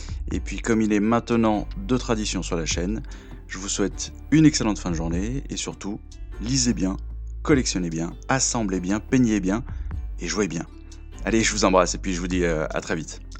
Et puis comme il est maintenant de tradition sur la chaîne, je vous souhaite une excellente fin de journée et surtout, lisez bien, collectionnez bien, assemblez bien, peignez bien et jouez bien. Allez, je vous embrasse et puis je vous dis à très vite.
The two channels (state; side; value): identical; both; correlation 1.00